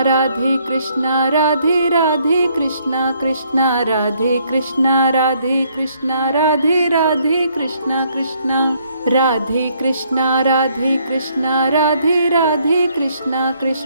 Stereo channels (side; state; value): both; inverted; correlation -0.68